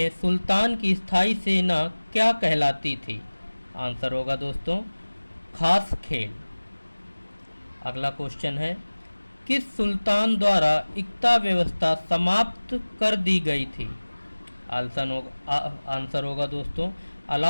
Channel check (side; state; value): both; inverted; correlation -1.00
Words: सुल्तान की स्थायी सेना क्या कहलाती थी? आंसर होगा दोस्तों खास खेल। अगला क्वेश्चन है, किस सुल्तान द्वारा इक्ता व्यवस्था समाप्त कर दी गई थी? आंसर होगा दोस्तों